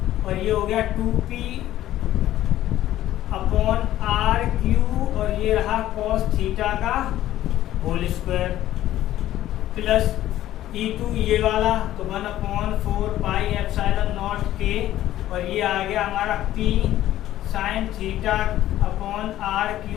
और ये हो गया 2p/r³ और ये रहा cos थीटा का होल स्क्वायर प्लस E2 ये वाला तो 1/4 पाई एप्सिलॉन नॉट के, और ये आ गया हमारा p sin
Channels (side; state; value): right; quieter; 13.6 dB